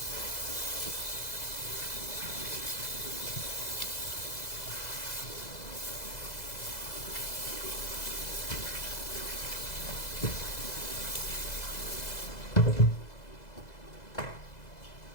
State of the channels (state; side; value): late; right; 2.0 ms